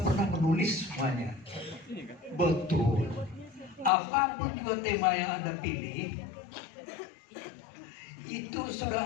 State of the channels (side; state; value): right; drops out; at 3.9 s